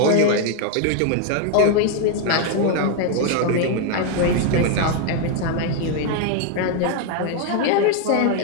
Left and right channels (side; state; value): both; different; correlation 0.01